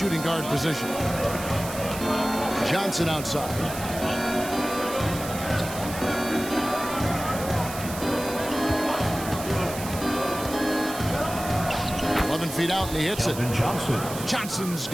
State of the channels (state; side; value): noise; right; hiss, 11 dB below the sound